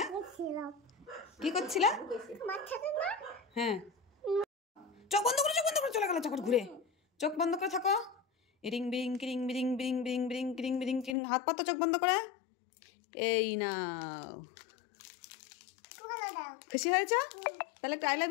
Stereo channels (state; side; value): drops out; right; at 11.2 s